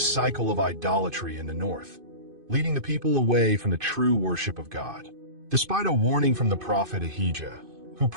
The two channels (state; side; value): late; left; 2.5 ms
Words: of idolatry in the north, leading the people away from the true worship of God. Despite a warning from the prophet Ahijah, who